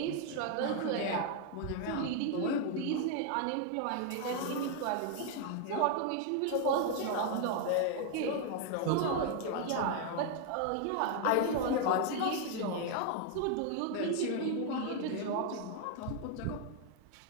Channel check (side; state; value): both; different; correlation 0.00